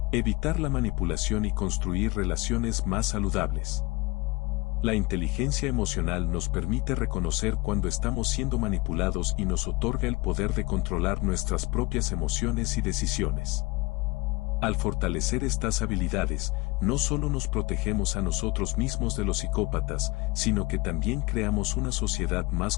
evitar la manipulación y construir relaciones más saludables. La inteligencia emocional nos permite reconocer cuando estamos siendo manipulados y nos otorga el poder de controlar nuestras propias emociones y decisiones. Al fortalecer estas habilidades, no solo nos protegemos a nosotros mismos de los psicópatas, sino que también creamos una sociedad más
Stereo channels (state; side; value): quieter; right; 23.8 dB